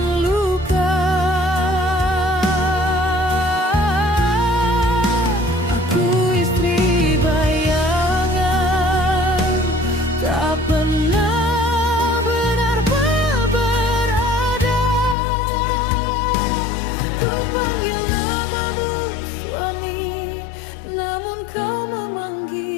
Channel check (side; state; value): right; drops out; at 15.2 s